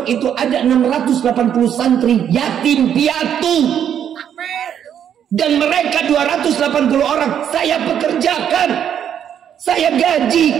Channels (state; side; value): quieter; left; 9.2 dB